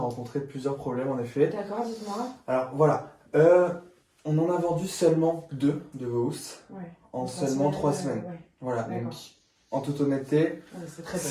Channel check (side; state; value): both; identical; correlation 1.00